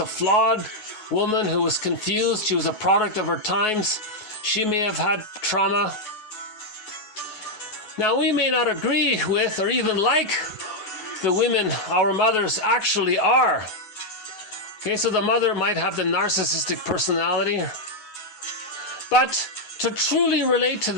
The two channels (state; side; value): late; right; 9.4 ms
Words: flawed woman who was confused. She was a product of her times. She may have had trauma. Now, we may not agree with or even like the women our mothers actually are. Okay, so the mother might have the narcissistic personality. But to truly relate to